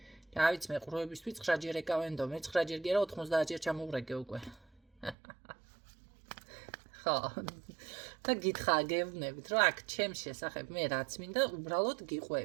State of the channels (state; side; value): drops out; left; at 5.2 s